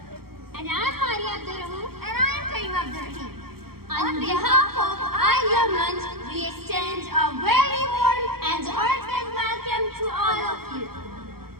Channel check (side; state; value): left; late; 0.94 ms